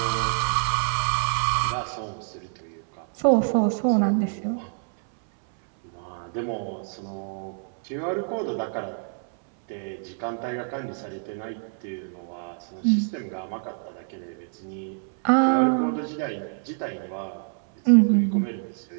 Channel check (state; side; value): silent; left; 61 dB below the other